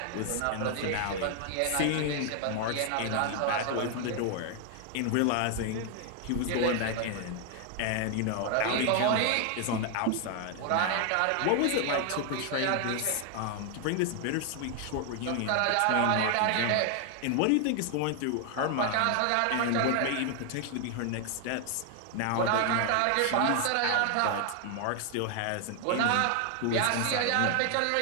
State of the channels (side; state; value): both; different; correlation 0.00